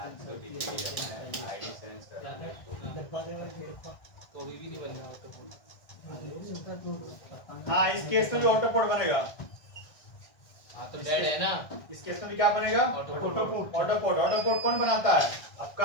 आईडी सेंस कर तो अभी भी नहीं बन रहा हाँ, इस केस में भी ऑटो पोर्ट बनेगा, हाँ तो डेड है ना, इस केस में भी क्या बनेगा, ऑटो ऑटो पोर्ट कौन बनाता है,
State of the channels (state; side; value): late; right; 1.6 ms